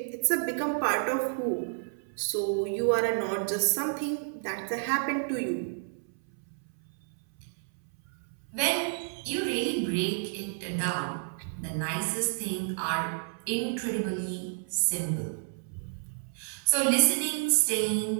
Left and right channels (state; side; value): silent; left; 58 dB below the other